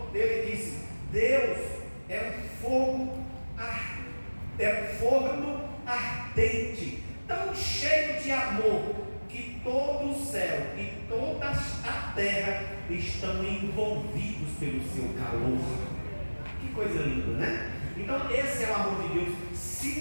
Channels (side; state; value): both; inverted; correlation -1.00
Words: ele disse: Deus é um forno ardente, tão cheio de amor, que todo o céu e toda a terra estão envolvidos pelo seu calor. Que coisa linda, né? Então esse é o amor de Deus.